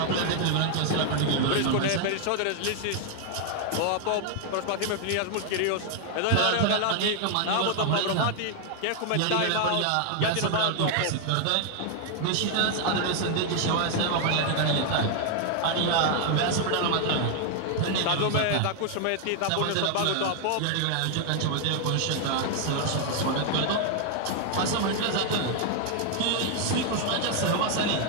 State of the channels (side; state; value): both; different; correlation 0.00